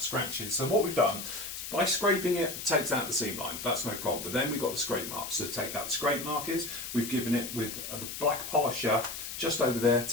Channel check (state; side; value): noise; left; hiss, 8 dB below the sound